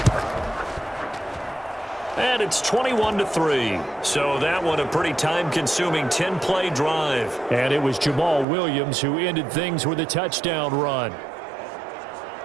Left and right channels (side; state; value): left; drops out; at 8.5 s